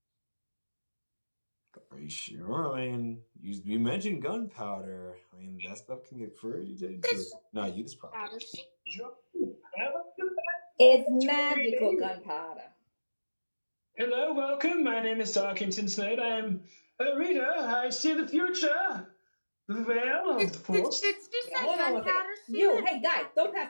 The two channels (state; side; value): inverted; both; correlation -1.00